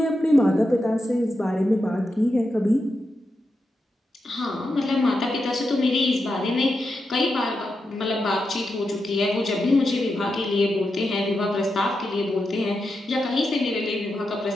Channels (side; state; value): both; normal; correlation 0.87